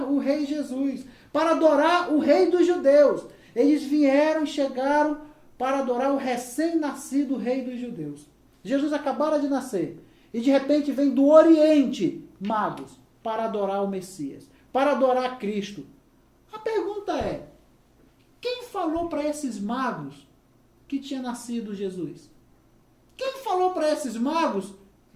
o Rei Jesus, para adorar o Rei dos Judeus. Eles vieram e chegaram para adorar o recém-nascido Rei dos Judeus. Jesus acabara de nascer e de repente vem do Oriente magos para adorar o Messias, para adorar Cristo. A pergunta é, quem falou para esses magos que tinha nascido Jesus? Quem falou para esses magos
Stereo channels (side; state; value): both; identical; correlation 1.00